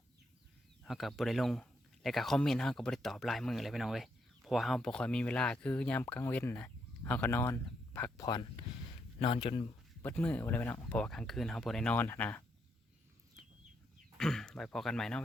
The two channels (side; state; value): both; normal; correlation 0.77